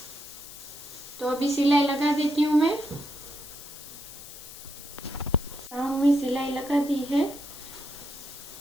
तो अभी सिलाई लगा देती हूँ मैं। राउंड में सिलाई लगा दी है,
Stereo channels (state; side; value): noise; left; hiss, 14 dB below the sound